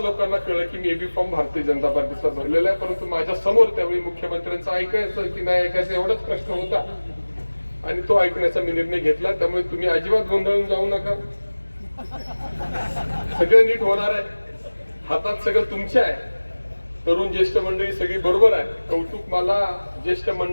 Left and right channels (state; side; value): inverted; both; correlation -1.00